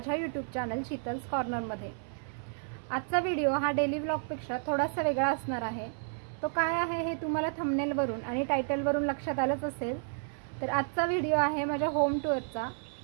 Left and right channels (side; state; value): left; silent; 57 dB below the other